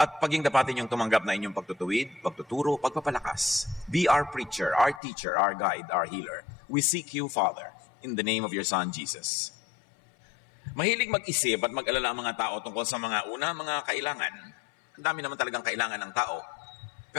paging dapatin yung tumanggap na inyong pagtutuwid, pagtuturo, pagpapalakas. Be our preacher, our teacher, our guide, our healer. We seek you, Father, in the name of your Son, Jesus. Mahilig mag-isip at mag-alala ang mga tao tungkol sa mga mga kailangan. Ang dami naman talagang kailangan ng tao.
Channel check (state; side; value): drops out; right; at 5.0 s